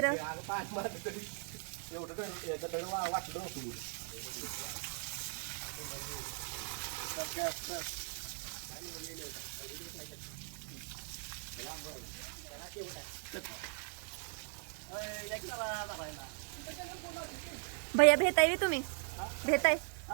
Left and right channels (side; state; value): left; silent; 52 dB below the other